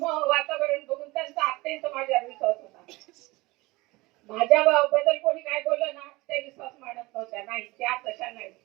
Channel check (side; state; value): left; quieter; 21.9 dB